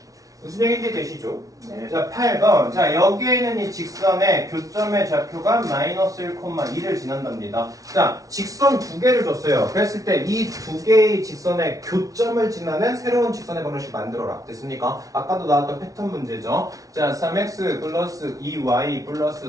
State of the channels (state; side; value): late; left; 0.17 ms